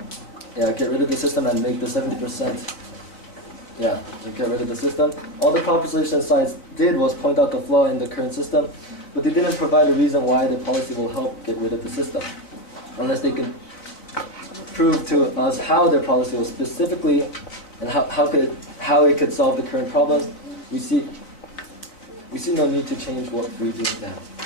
Get rid of the system and make the 70%. Yeah, get rid of the system. All the proposition sides did was point out the flaw in the current system, but they didn't provide a reason why the policy will help get rid of the system, unless they can prove to us how their policy was specifically and how it could solve the current problems. We see no need to change what we do now.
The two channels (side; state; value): right; late; 4.1 ms